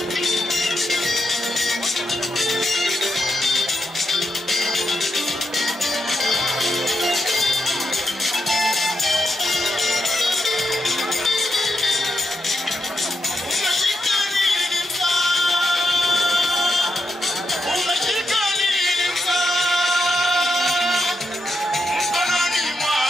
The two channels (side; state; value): both; normal; correlation 0.84